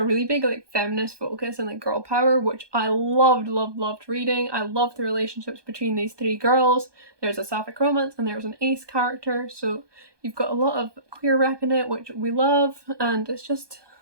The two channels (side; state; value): left; late; 1.2 ms